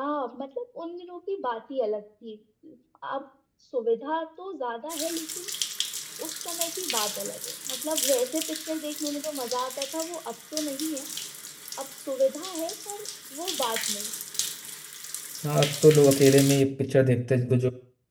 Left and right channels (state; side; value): identical; both; correlation 1.00